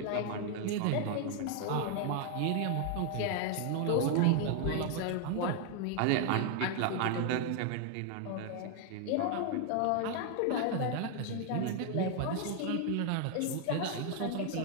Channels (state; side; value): different; both; correlation 0.00